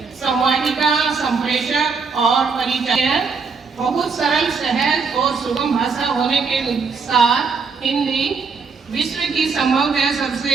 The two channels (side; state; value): left; quieter; 5.1 dB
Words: संवाहिका, संप्रेषक और परिचय है। बहुत सरल, सहज और सुगम भाषा होने के साथ हिंदी विश्व की संभवतः